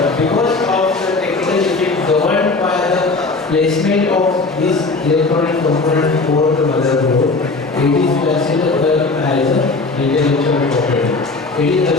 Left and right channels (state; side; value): quieter; right; 3.7 dB